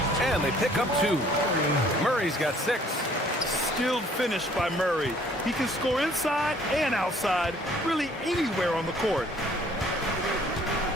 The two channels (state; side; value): normal; both; correlation 0.58